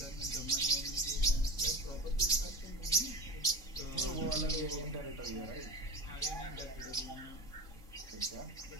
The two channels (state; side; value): late; right; 3.7 ms